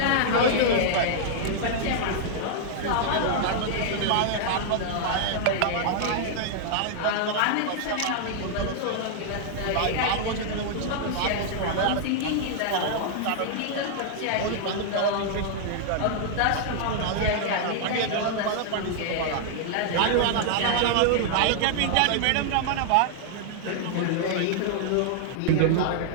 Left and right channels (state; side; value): different; both; correlation -0.01